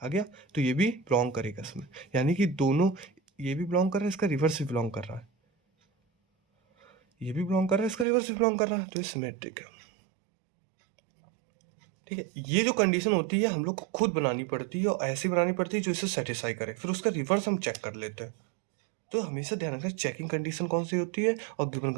तो ये भी बिलोंग करेगा इसमें, यानी कि दोनों, ये भी बिलोंग कर रहा है, इसका रिवर्स भी बिलोंग कर रहा है, ये भी बिलोंग कर रहा है, इसका रिवर्स भी बिलोंग कर रहा है, तो ये सिमेट्रिक है, ठीक है। ये जो कंडीशन होती है हम लोग को खुद बनानी पड़ती है, और ऐसी बनानी पड़ती है जो इसे सेटिस्फाई करे, फिर उसका रिवर्स हम चेक कर लेते हैं। तो हमेशा ध्यान रखना चेकिंग कंडीशन कौन सी होती है और गिवन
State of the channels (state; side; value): drops out; left; at 8.1 s